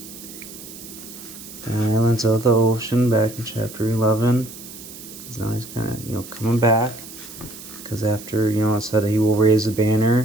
The islands of the ocean, back in chapter 11. Because now he's kind of, coming back. Because after, it said he will raise a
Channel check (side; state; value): right; noise; hiss, 15 dB below the sound